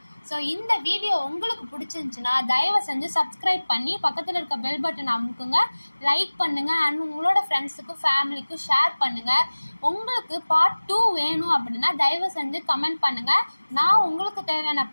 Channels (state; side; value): inverted; both; correlation -1.00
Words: ஸோ இந்த வீடியோ உங்களுக்கு பிடிச்சிருந்துச்சுன்னா தயவு செஞ்சு சப்ஸ்கிரைப் பண்ணி பக்கத்தில் இருக்க பெல் பட்டன் அமுக்குங்க, லைக் பண்ணுங்கள், அண்ட் உங்களோட ஃப்ரெண்ட்ஸுக்கும் ஃபேமிலிக்கும் ஷேர் பண்ணுங்கள். உங்களுக்கு பார்ட் 2 வேணும் அப்படின்னா தயவு செஞ்சு கமெண்ட் பண்ணுங்கள். நான் உங்களுக்கு தேவையான